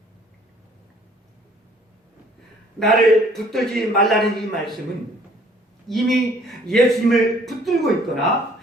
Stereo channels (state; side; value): normal; both; correlation 0.58